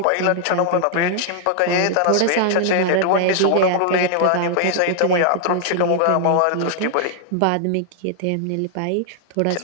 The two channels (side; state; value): both; different; correlation -0.01